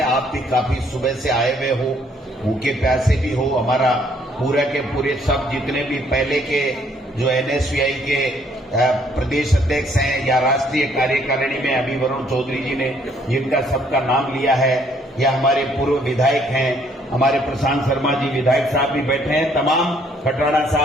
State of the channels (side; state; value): both; normal; correlation 0.65